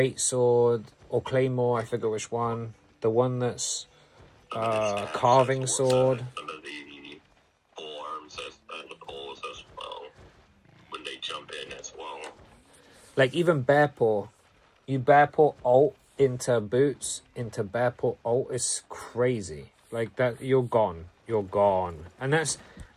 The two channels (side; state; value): both; identical; correlation 1.00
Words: sword, or claymore, I forget which one. The one that's carving sword. Some of the polearms and the poles as well, when they jump in as well. Like even bear paw, you bear paw ult into boots, into bear paw ult is crazy. Like that, you're gone, and